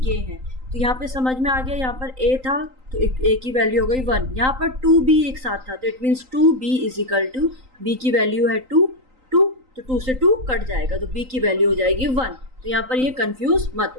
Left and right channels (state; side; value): late; left; 3.9 ms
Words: ये है। तो यहाँ पे समझ में आ गया, यहाँ पर A था तो A की वैल्यू हो गई 1, यहाँ पर 2B एक साथ था, तो it means 2B is equal to, B की वैल्यू है 2, तो 2 से 2 कट जाएगा, तो B की वैल्यू हो जाएगी 1। तो यहाँ पर ये कंफ्यूज मत